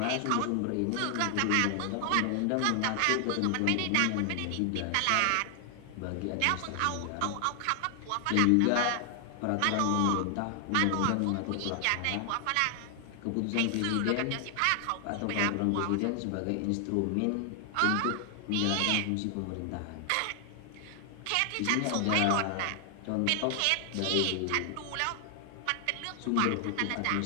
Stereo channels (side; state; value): both; different; correlation 0.00